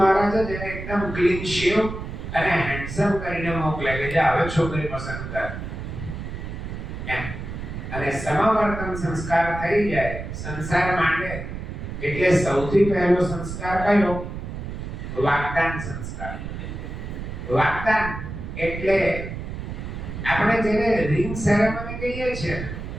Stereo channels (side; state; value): right; noise; rumble, 7 dB below the sound